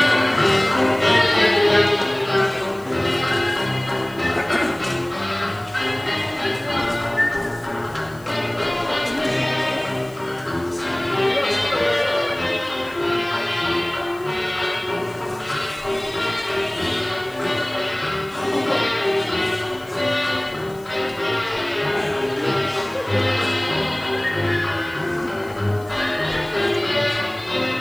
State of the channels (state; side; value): noise; left; hiss, 25 dB below the sound